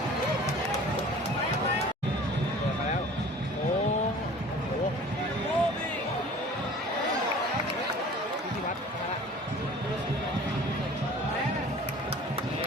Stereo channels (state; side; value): normal; both; correlation 0.45